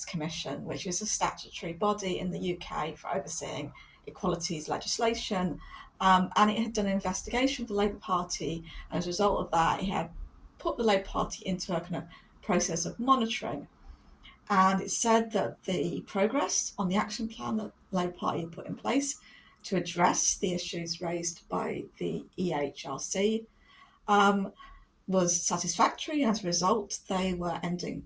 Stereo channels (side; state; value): both; identical; correlation 1.00